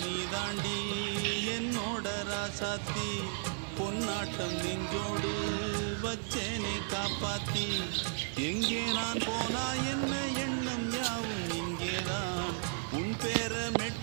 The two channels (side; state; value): left; silent; digital silence